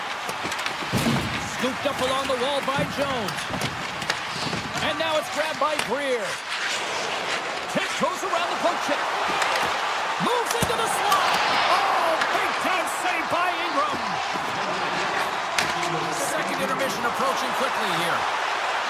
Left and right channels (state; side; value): identical; both; correlation 1.00